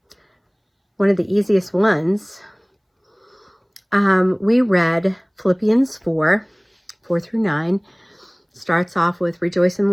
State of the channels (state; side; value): identical; both; correlation 1.00